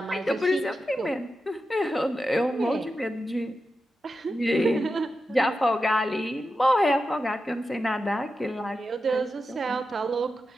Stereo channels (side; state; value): both; normal; correlation 0.90